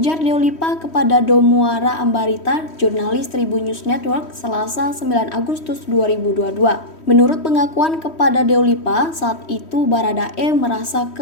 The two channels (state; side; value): late; right; 3.1 ms